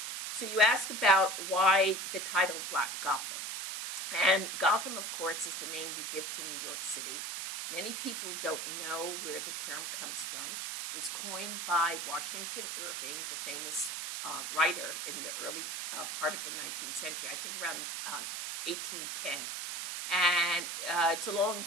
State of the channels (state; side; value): noise; right; hiss, 4 dB below the sound